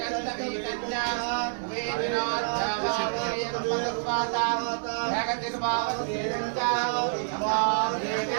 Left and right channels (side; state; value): left; silent; 59 dB below the other